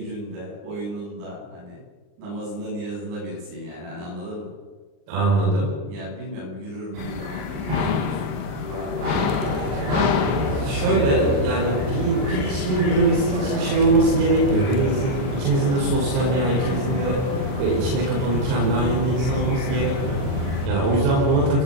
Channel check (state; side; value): late; left; 39 ms